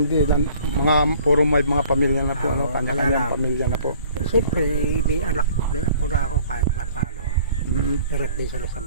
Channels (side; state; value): both; inverted; correlation -0.53